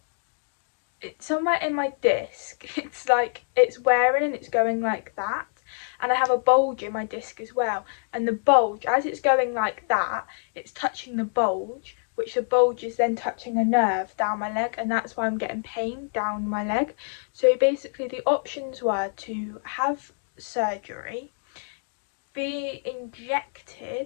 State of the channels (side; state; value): right; silent; digital silence